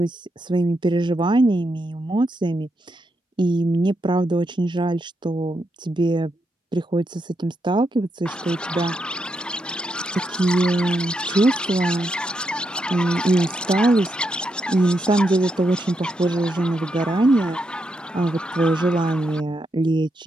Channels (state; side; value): normal; both; correlation 0.82